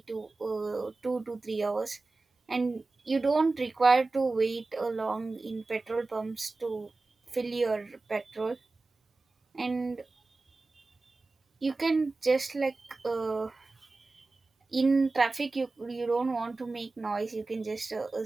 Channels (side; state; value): left; quieter; 3.5 dB